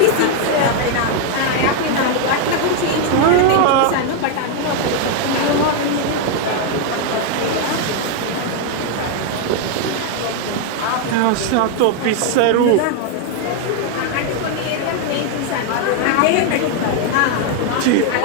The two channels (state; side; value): different; both; correlation 0.00